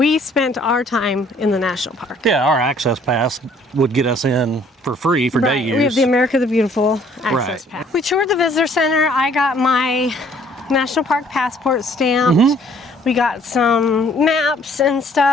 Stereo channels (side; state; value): both; normal; correlation 0.60